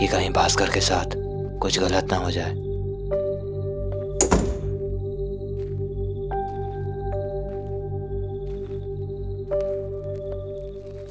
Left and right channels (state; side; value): identical; both; correlation 1.00